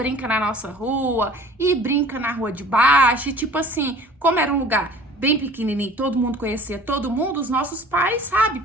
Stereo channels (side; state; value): both; normal; correlation 0.47